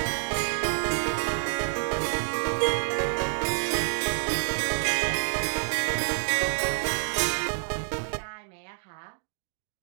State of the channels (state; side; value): silent; left; digital silence